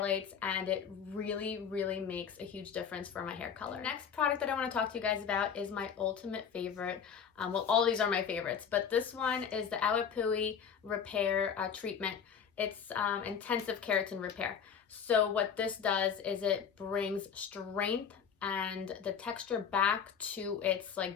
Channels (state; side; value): quieter; right; 7.2 dB